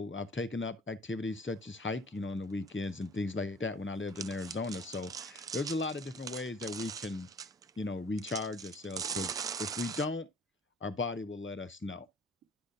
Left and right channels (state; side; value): normal; both; correlation 0.50